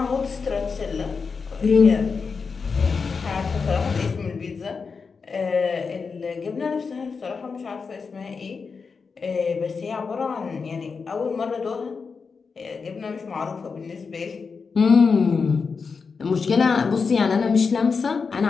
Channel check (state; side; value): quieter; right; 5.1 dB